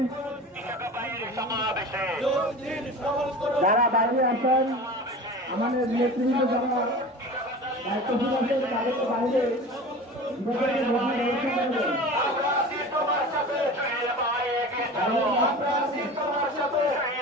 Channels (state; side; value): normal; both; correlation 0.35